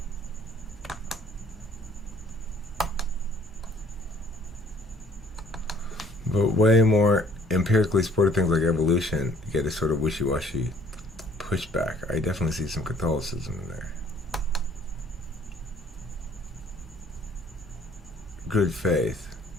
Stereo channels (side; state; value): both; normal; correlation 0.58